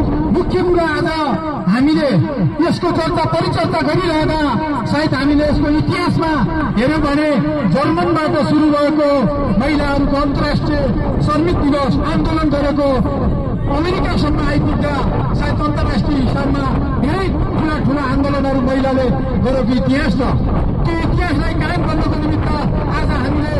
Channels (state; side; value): identical; both; correlation 1.00